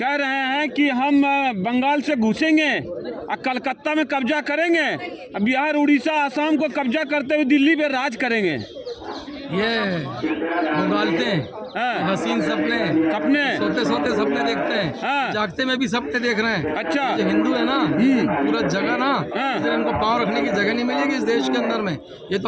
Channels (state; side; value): identical; both; correlation 1.00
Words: रहे हैं कि हम बंगाल से घुसेंगे और कलकत्ता में कब्जा करेंगे, बिहार, उड़ीसा, आसाम को कब्जा करते हुए दिल्ली पे राज करेंगे। ये उगालते हैं हसीन सपने सोते सोते सपने देखते हैं, जागते में भी सपने देख रहे हैं। अच्छा, जो हिंदू है ना पूरा जगह ना, इसलिए इनको पाँव रखने की जगह नहीं मिलेगी इस देश के अंदर में। ये तो